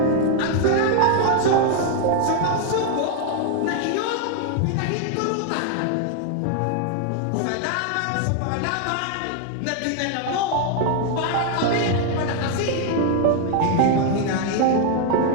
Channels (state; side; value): different; both; correlation 0.00